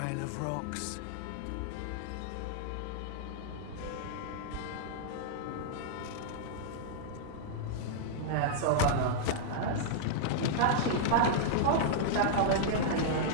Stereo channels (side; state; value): both; different; correlation -0.02